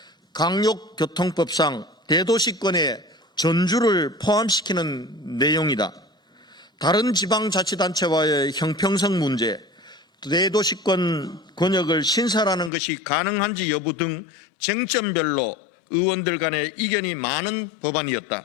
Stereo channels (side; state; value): right; drops out; at 12.7 s